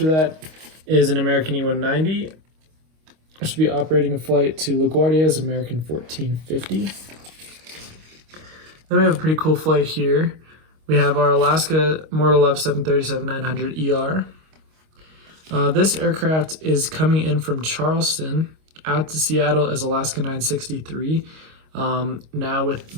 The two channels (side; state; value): left; late; 25 ms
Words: that is an American E190, which will be operating a flight to LaGuardia as American 1450. Then we have a pretty cool flight here. We have our Alaska Mortal Love 737-900 ER. This aircraft is coming in from Charleston out to Seattle as Alaska 963. Now with